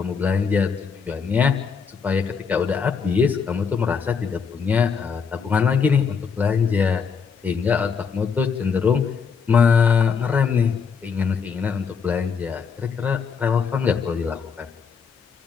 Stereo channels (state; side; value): quieter; right; 6.1 dB